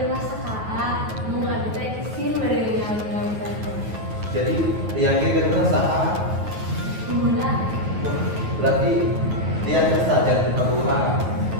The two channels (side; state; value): left; late; 9.3 ms